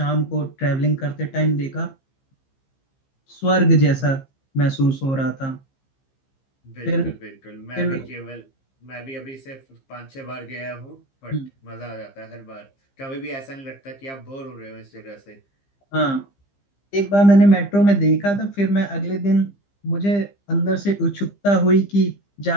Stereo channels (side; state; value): right; late; 15 ms